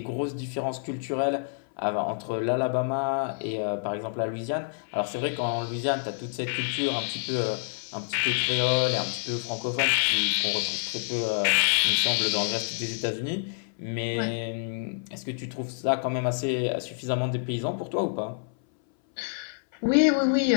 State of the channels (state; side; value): silent; right; 58 dB below the other